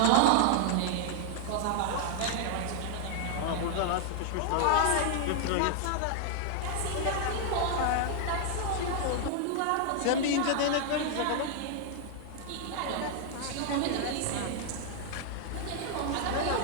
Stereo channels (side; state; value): both; different; correlation 0.00